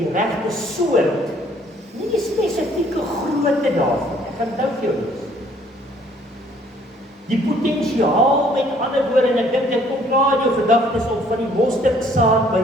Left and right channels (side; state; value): both; normal; correlation 0.61